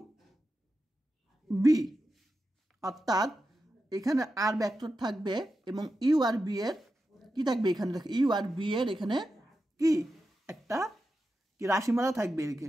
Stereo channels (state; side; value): normal; both; correlation 0.90